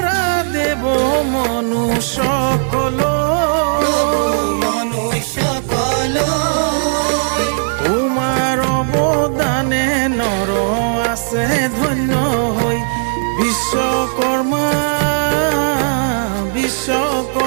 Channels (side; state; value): left; silent; 63 dB below the other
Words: দেৱ মনুষ্য তোমাৰ অৱদানে নৰ আছে ধন্য হৈ বিশ্বকৰ্মা